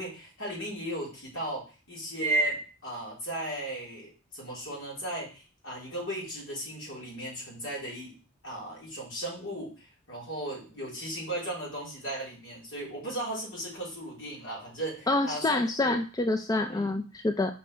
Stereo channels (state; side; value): normal; both; correlation 0.32